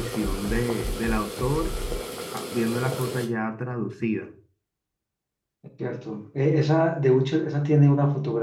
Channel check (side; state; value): both; identical; correlation 1.00